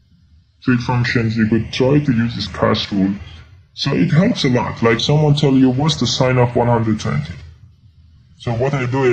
functions, you could try to use this CAS rule. So it helps a lot. Like someone tell you, what's the sine of 120? So what I do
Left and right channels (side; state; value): both; identical; correlation 1.00